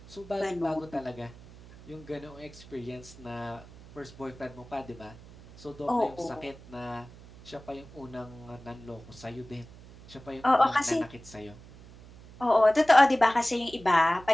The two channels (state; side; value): noise; right; hum, 20 dB below the sound